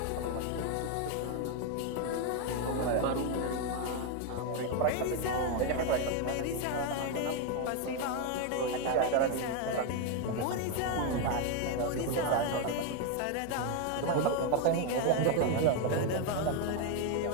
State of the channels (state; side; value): different; both; correlation 0.01